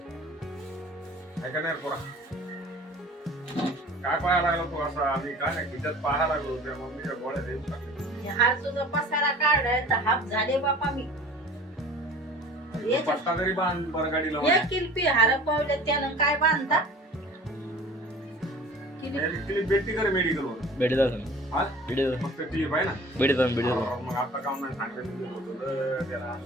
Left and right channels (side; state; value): both; normal; correlation 0.44